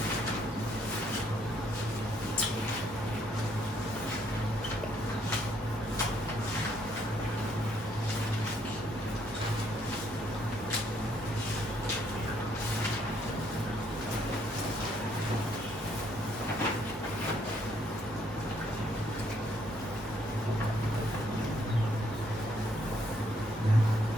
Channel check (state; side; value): normal; both; correlation 0.69